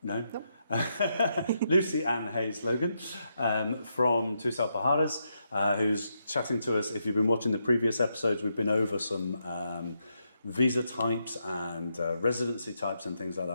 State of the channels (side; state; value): both; inverted; correlation -0.81